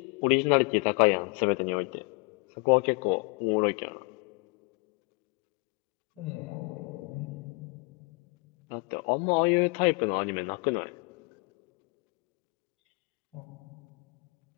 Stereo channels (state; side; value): quieter; right; 32.6 dB